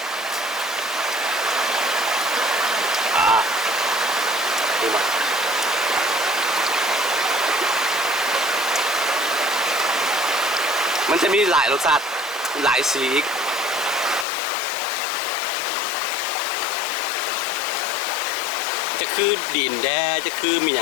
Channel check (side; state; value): right; drops out; at 14.2 s